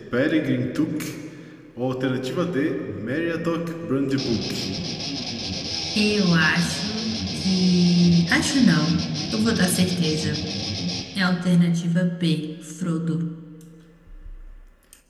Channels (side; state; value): both; identical; correlation 1.00